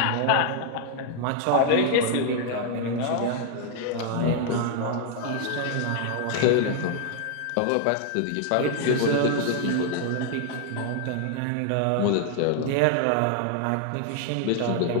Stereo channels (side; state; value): both; different; correlation 0.00